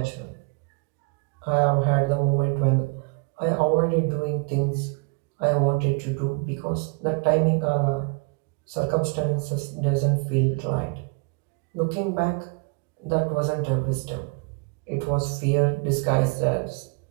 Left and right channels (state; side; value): quieter; left; 32.8 dB